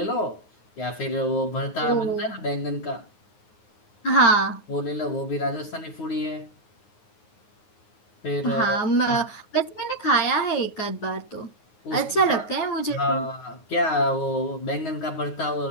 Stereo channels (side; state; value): right; late; 9.5 ms